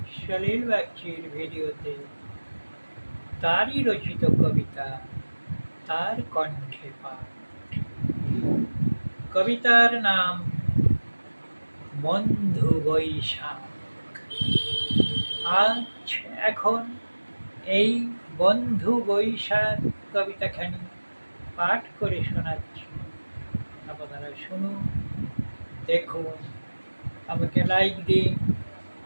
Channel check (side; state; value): both; inverted; correlation -1.00